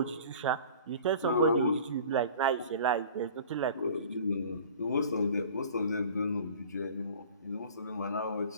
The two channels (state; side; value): inverted; both; correlation -0.45